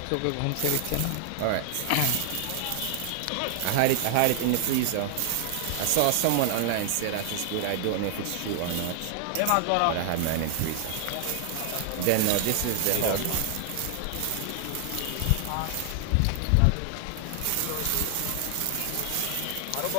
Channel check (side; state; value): both; different; correlation 0.00